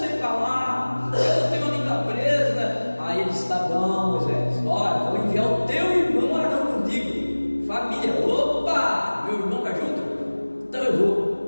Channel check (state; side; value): inverted; both; correlation -1.00